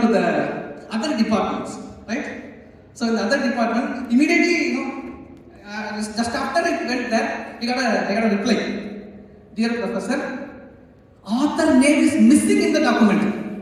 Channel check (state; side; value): identical; both; correlation 1.00